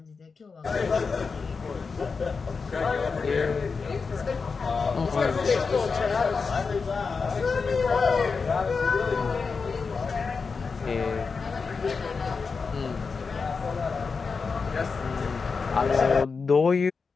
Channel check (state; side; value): quieter; right; 4.9 dB